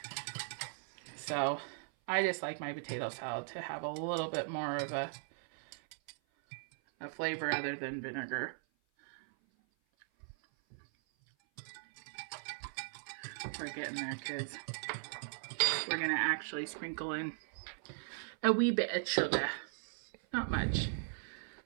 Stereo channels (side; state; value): left; silent; 52 dB below the other